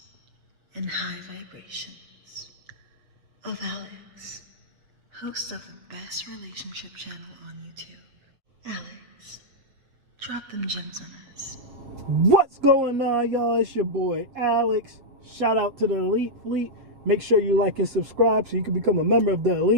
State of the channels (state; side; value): late; left; 8.0 ms